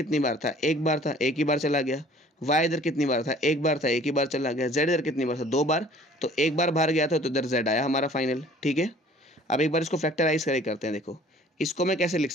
बार था, 1 बार था, 1 ही बार चला गया। y इधर कितनी बार था, 1 बार था, 1 ही बार चला गया। z इधर कितनी बार था, 2 बार, तो 1 बार बाहर गया था, तो इधर z आया हमारा फाइनल। ठीक है, अब एक बार इसको फैक्टराइज करते हैं। देखो इसको मैं कैसे लिख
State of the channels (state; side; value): normal; both; correlation 0.52